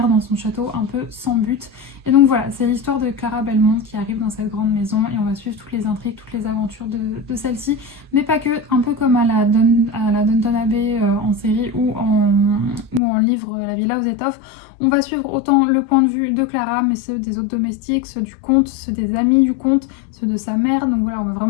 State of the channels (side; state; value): right; drops out; at 13.0 s